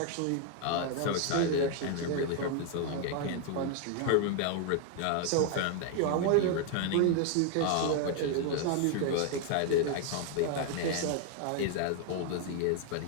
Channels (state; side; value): different; both; correlation 0.00